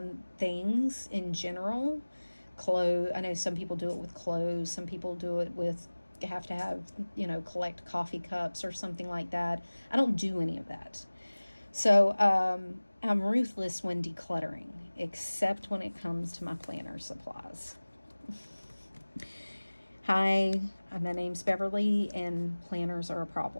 things in general. Clothes, I know some people do it with clothes, some people do it with, have to have, collect coffee cups or something like that. I don't do any of that. So I'm ruthless when decluttering, except when it comes to my planner supplies. Hi, my name's Beverly, and planners are a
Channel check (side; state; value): both; inverted; correlation -1.00